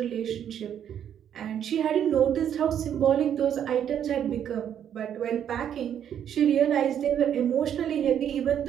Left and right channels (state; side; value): quieter; left; 9.4 dB